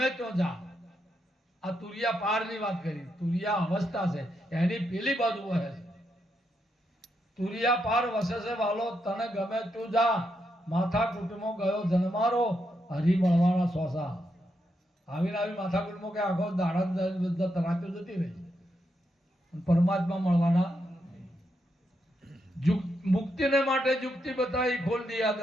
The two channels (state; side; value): normal; both; correlation 0.82